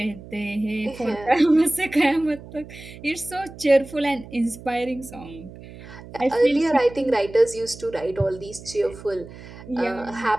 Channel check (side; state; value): right; noise; hum, 16 dB below the sound